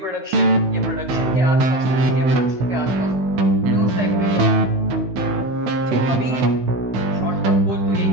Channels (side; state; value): left; late; 16 ms